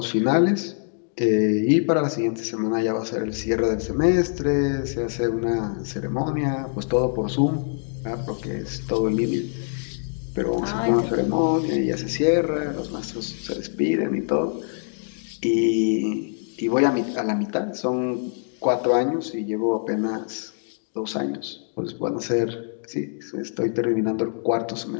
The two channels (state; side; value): silent; right; 61 dB below the other